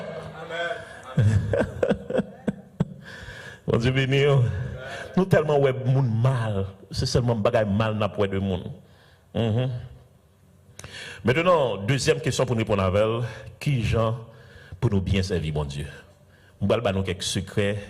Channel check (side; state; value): both; identical; correlation 1.00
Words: Amen. Bon Dieu béni. Nous tellement ouais moun mal, c'est seulement bagay mal n'a pour de monde. Maintenant, deuxième question pour nous répondre avec, qui gens pour nous bien servir mon Dieu. On va nous quelques secrets,